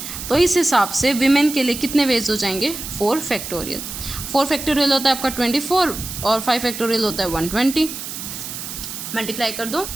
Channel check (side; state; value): right; noise; hiss, 8 dB below the sound